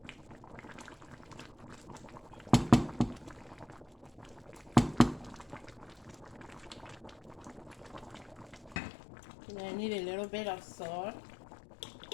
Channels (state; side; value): drops out; right; at 8.8 s